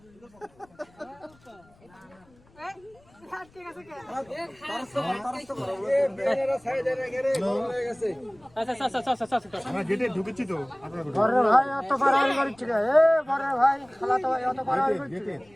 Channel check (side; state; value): left; noise; rumble, 29 dB below the sound